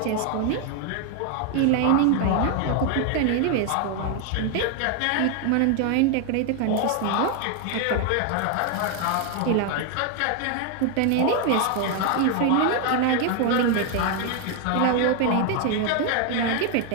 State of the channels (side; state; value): both; different; correlation 0.01